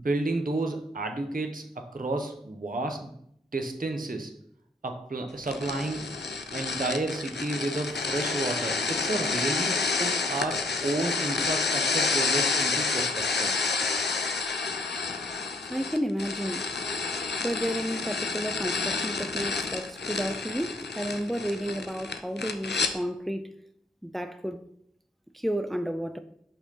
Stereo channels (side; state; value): both; normal; correlation 0.64